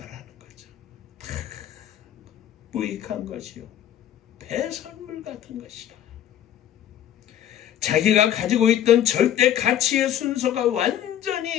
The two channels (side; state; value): right; quieter; 11.0 dB